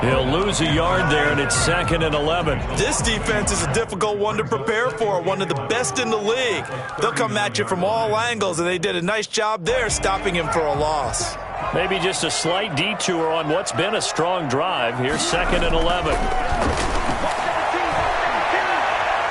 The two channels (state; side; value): identical; both; correlation 1.00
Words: He'll lose a yard there, and it's 2nd and 11. This defense is a difficult one to prepare for, one of the best in the league. They'll come at you from all angles, and they did a nice job there stopping him for a loss. Maybe just a slight detour on what's been a strong drive. Here's 2nd and 11.